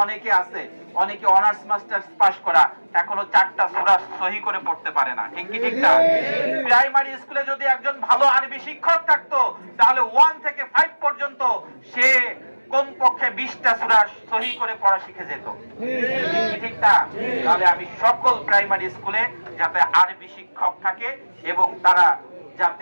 অনেকে আছে, অনেকে অনার্স মাস্টার্স পাস করা, এখনো 4টা সূরা সহি করে পড়তে পারে না, ঠিক কি ঠিক না? প্রাইমারি স্কুলে যদি একজন ভালো আরবি শিক্ষক থাকতো, তাহলে 1 থেকে 5 পর্যন্ত সে কমপক্ষে 20টা সূরা সহি করে পড়া শিখে যেত, ঠিক কি ঠিক না? তাহলে আমি সকল প্রাইমারি স্কুলে যাতে আরবি শিক্ষক থাকে এবং তারা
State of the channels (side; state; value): both; inverted; correlation -1.00